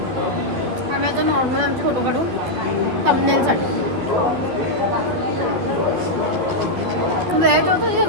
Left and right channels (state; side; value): late; left; 12 ms